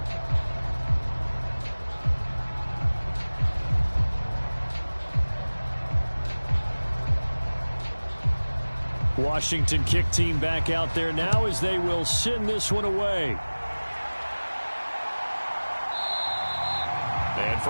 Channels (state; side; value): inverted; both; correlation -1.00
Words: Washington kick team back out there now as they will send this one away. And